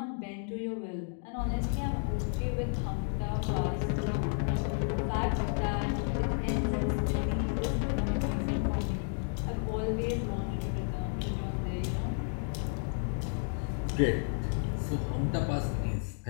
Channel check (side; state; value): right; silent; 55 dB below the other